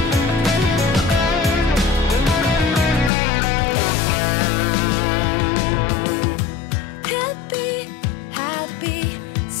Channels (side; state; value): right; drops out; at 3.1 s